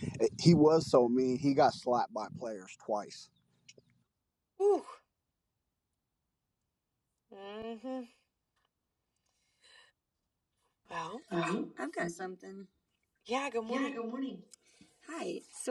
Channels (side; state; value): both; identical; correlation 1.00